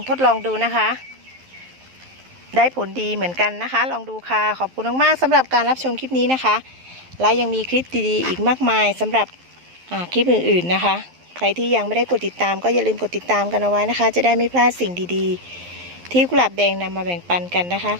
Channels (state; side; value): late; left; 11 ms